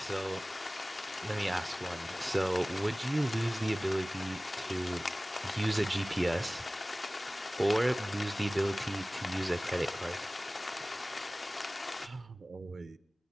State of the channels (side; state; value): both; normal; correlation 0.98